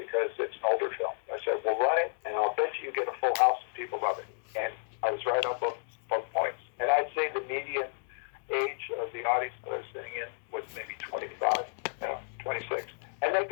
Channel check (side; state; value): right; silent; digital silence